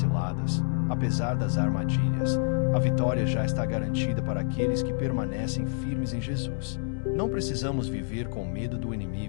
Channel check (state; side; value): silent; right; digital silence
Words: apesar das armadilhas, a vitória já está garantida para aqueles que permanecem firmes em Jesus. Não precisamos viver com medo do